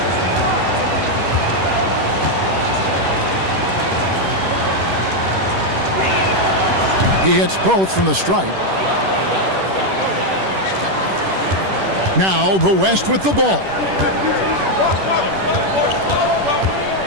He hits both from the stripe. Now the West with the ball.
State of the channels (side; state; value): left; late; 10 ms